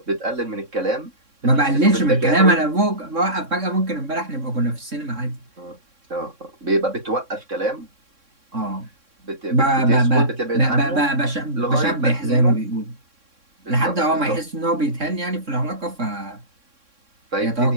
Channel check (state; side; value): late; left; 3.6 ms